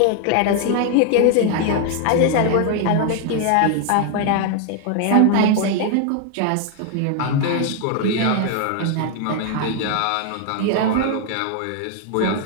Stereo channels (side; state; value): both; different; correlation 0.00